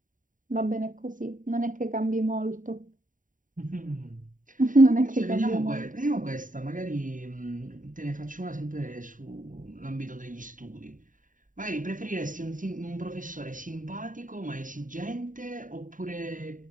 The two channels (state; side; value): late; left; 0.38 ms